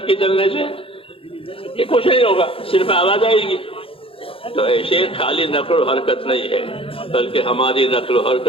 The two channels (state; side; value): late; right; 0.27 ms